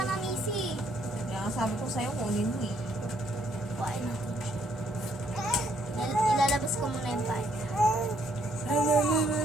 na, misi. Kaya sabi ko sa'yo, kunin mo eh. Kuhain ako. Ilalabas ko muna yung bag.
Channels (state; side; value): normal; both; correlation 0.69